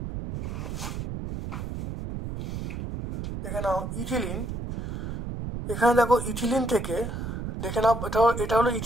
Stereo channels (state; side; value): noise; right; rumble, 6 dB below the sound